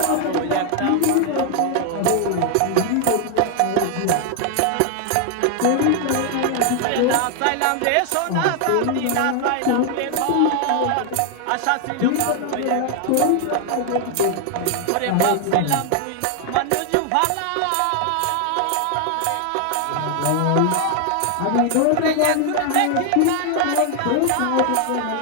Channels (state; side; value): different; both; correlation 0.00